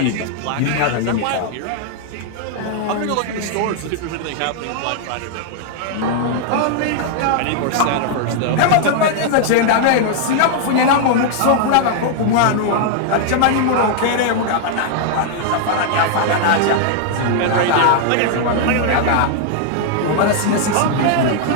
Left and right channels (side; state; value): both; different; correlation 0.00